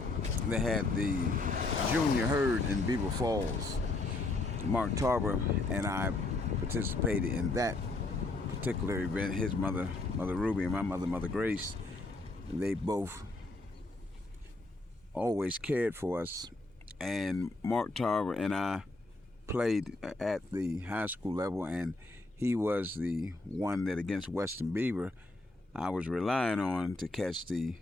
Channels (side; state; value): right; quieter; 3.1 dB